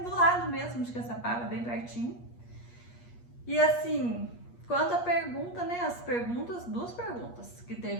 lado mesmo de Caçapava, bem pertinho. E assim, quanto a pergunta, né, duas perguntas que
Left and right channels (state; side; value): late; right; 8.4 ms